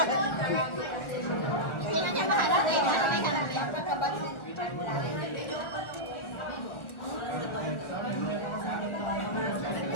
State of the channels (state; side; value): late; right; 1.4 ms